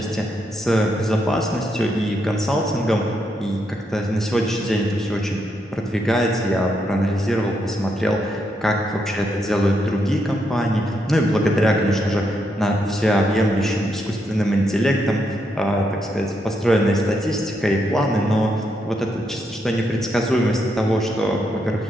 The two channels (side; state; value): both; normal; correlation 0.79